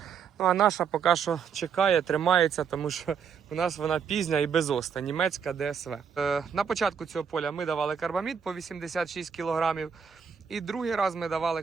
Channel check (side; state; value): left; quieter; 6.8 dB